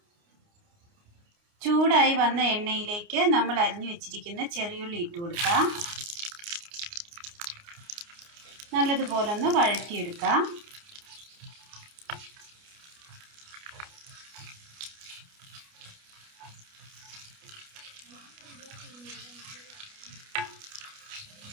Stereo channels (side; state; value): left; late; 29 ms